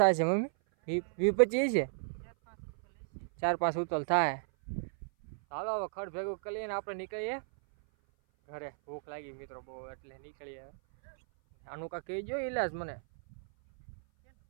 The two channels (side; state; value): left; silent; 55 dB below the other